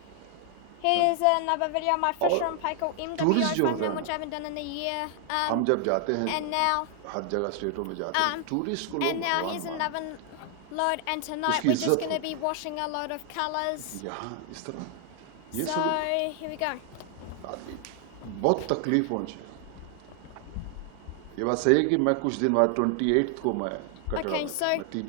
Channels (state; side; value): different; both; correlation 0.00